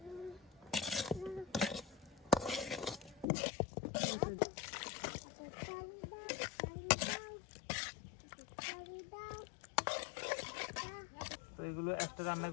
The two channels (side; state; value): right; drops out; at 3.2 s